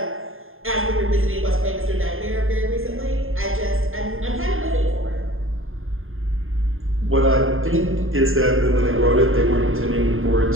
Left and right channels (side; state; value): left; late; 0.60 ms